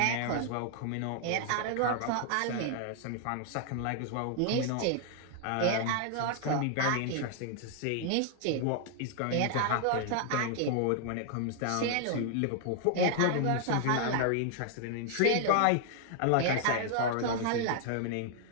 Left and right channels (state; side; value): different; both; correlation 0.00